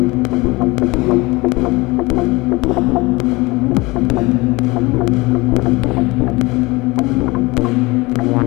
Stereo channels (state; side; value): quieter; right; 23.0 dB